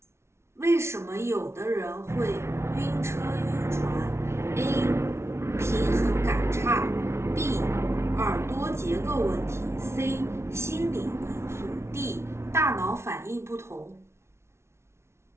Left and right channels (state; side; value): late; left; 0.13 ms